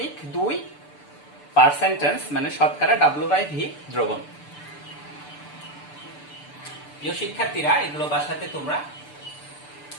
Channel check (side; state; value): right; late; 6.8 ms